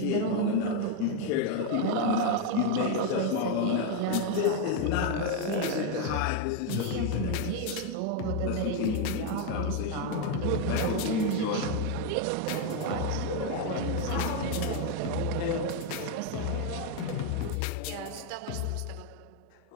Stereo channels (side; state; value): both; different; correlation 0.01